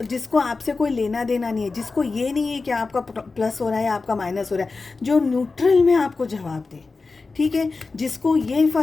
आपसे कोई लेना देना नहीं है, जिसको ये नहीं है कि आपका प्लस हो रहा है, आपका माइनस हो रहा है, जो न्यूट्रल में आपको जवाब दे, ठीक है, जिसको ये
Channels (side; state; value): right; quieter; 4.0 dB